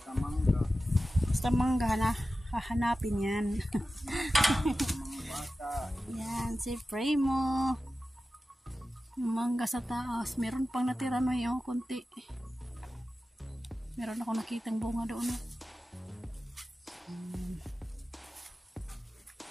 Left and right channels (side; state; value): both; normal; correlation 0.94